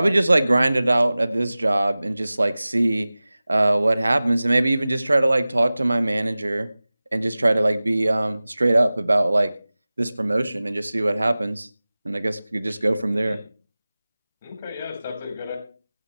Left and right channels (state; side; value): inverted; both; correlation -0.98